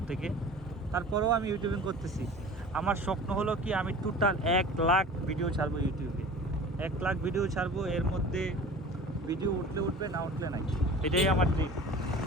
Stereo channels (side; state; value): both; normal; correlation 0.40